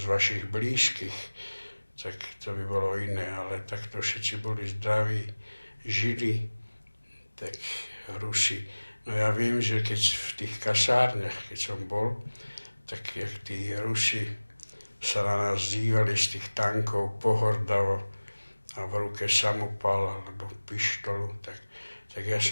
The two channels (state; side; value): inverted; both; correlation -1.00